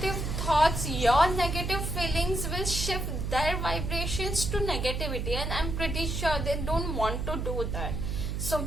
thoughts, your negative feelings will shift their vibrations to negativity. And I'm pretty sure they don't want to do that. So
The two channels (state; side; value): noise; right; hum, 2 dB below the sound